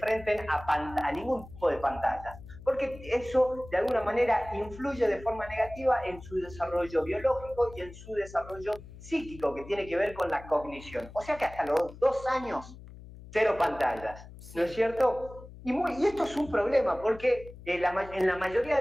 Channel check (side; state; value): left; noise; hum, 17 dB below the sound